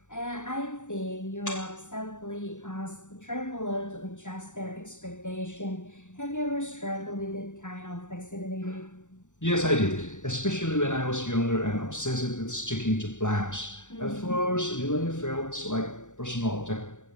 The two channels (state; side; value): late; right; 0.85 ms